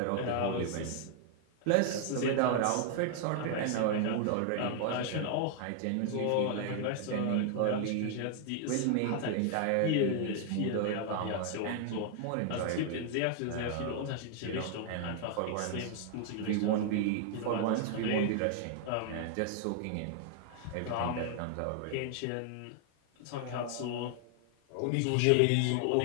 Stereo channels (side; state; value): both; different; correlation 0.00